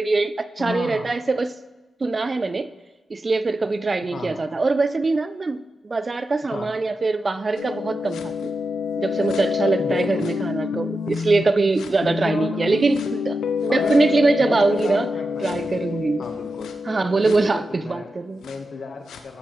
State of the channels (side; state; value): both; normal; correlation 0.90